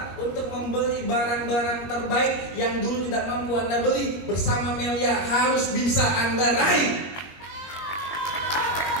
Untuk membeli barang-barang terbaik yang dulu tidak mampu Anda beli. Bersama Melia harus bisa Anda raih.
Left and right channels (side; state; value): right; late; 21 ms